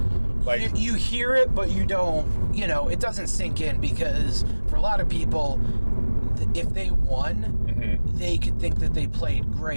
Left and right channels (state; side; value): inverted; both; correlation -1.00